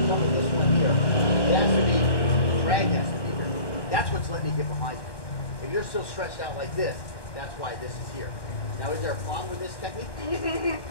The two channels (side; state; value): right; late; 1.1 ms